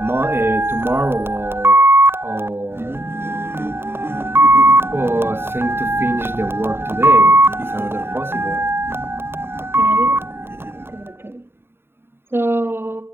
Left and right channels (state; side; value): late; left; 0.11 ms